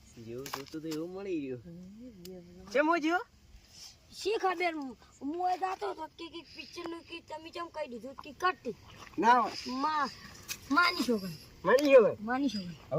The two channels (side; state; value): both; identical; correlation 1.00